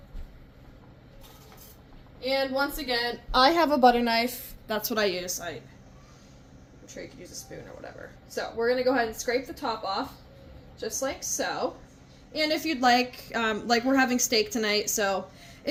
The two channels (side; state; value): both; identical; correlation 1.00